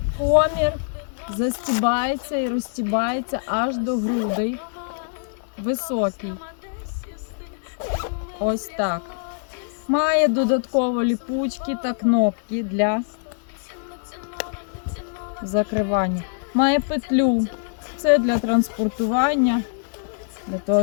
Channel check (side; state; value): right; silent; digital silence